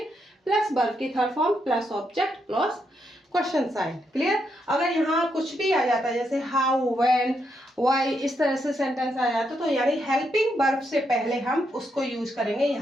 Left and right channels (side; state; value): both; normal; correlation 0.80